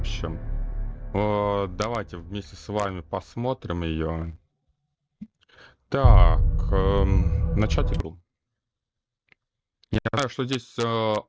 Давайте вместе с вами посмотрим ее. Так, начать игру. Я знаю, что здесь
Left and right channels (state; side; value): identical; both; correlation 1.00